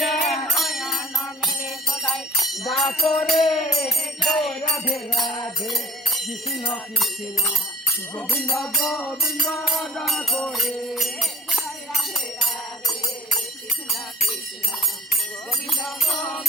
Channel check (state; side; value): normal; both; correlation 0.45